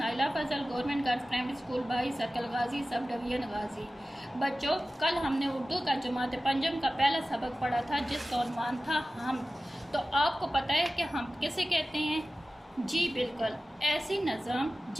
Fazal government girls primary school बाई circle Ghazi subdivision गाजी। बच्चों, कल हमने उर्दू का जमात पंजम का पहला सबक पढ़ा था जिसका उन्वान था हम। तो आपको पता है कि हम किसे कहते हैं? जी बिल्कुल, ऐसी नज़म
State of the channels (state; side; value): normal; both; correlation 0.96